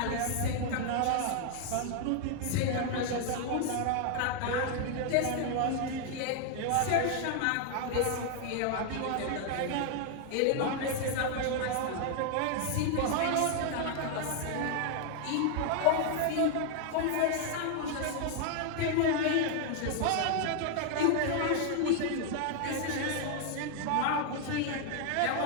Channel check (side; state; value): both; different; correlation 0.00